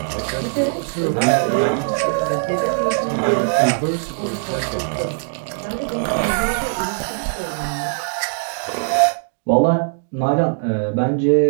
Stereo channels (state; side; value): silent; left; digital silence